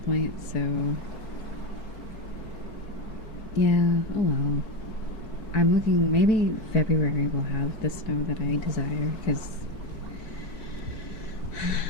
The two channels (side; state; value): right; late; 4.6 ms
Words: point. So yeah, oh well. I'm looking. Maybe February will have the snow that I desire because